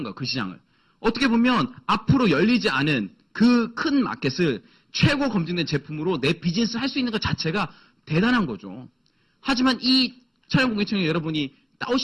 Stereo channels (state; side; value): identical; both; correlation 1.00